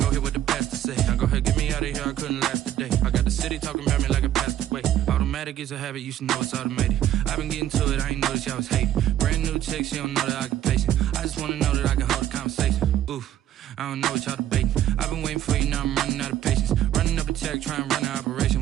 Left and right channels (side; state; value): left; quieter; 11.7 dB